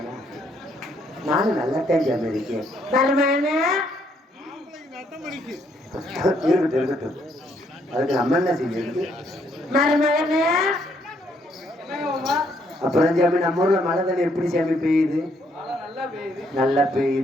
நானும் நல்லா தெரிஞ்சாம இருக்கேன். இருக்கட்டும் இருக்கட்டும். அதுக்கு நம்ம என்ன செய்யுது? அப்புறம் சாமி நம்ம ஊர்ல மழை தண்ணி எப்படி சாமி பெய்யுது? நல்லா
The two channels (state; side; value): normal; both; correlation 0.70